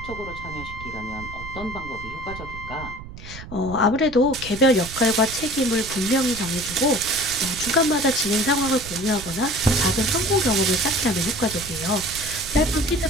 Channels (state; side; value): noise; right; rumble, 13 dB below the sound